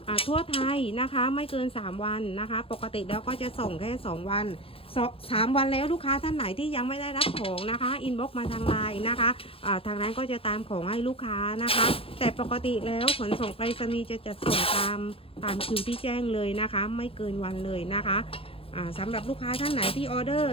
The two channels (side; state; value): right; late; 0.27 ms